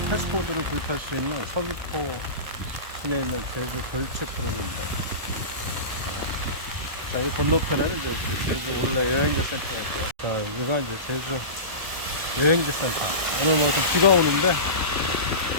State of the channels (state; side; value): late; left; 1.3 ms